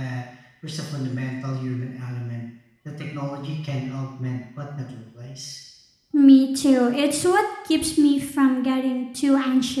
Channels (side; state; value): both; identical; correlation 1.00